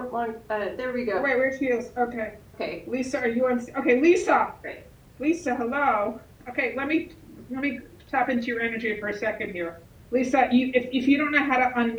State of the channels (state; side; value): identical; both; correlation 1.00